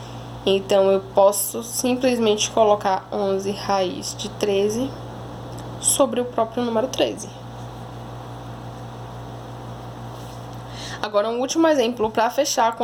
Então, eu posso simplesmente colocar 11 raiz de 13 sobre o próprio número 13. Agora, um último exemplo para fechar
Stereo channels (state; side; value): identical; both; correlation 1.00